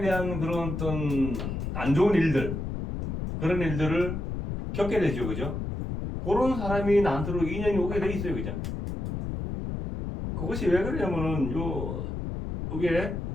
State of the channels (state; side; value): noise; left; rumble, 4 dB below the sound